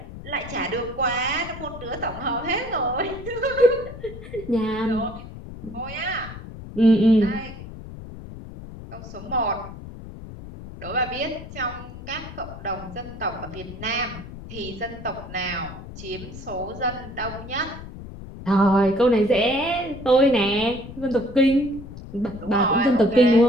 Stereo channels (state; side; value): noise; left; rumble, 13 dB below the sound